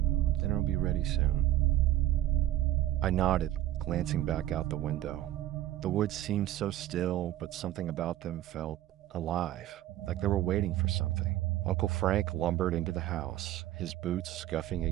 Dinner will be ready soon." I nodded, glancing back out the window. The woods seemed so still, but something about them felt alive, like they were waiting for something. Uncle Frank lumbered into the house, his boots scuffing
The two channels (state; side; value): quieter; left; 13.6 dB